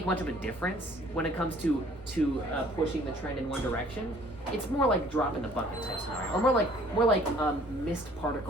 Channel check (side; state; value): both; normal; correlation 0.56